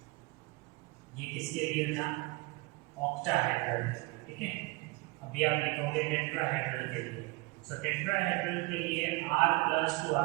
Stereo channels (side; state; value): left; quieter; 23.9 dB